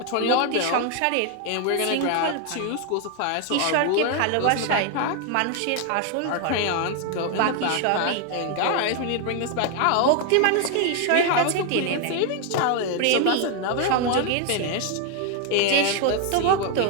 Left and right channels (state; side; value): different; both; correlation 0.01